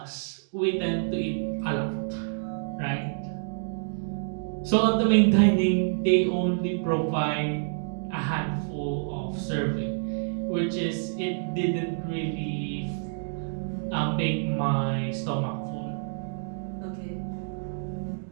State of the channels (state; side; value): silent; left; digital silence